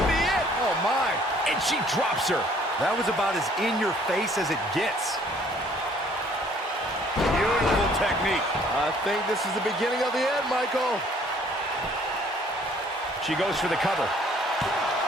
be it. Oh, my. And she drops her. That was about as in your face as it gets. Beautiful technique. I think this is the beginning of the end, Michael. She goes for the cover.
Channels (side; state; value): both; normal; correlation 0.59